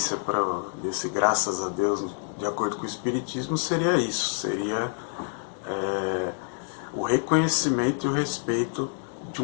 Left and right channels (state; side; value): silent; right; 60 dB below the other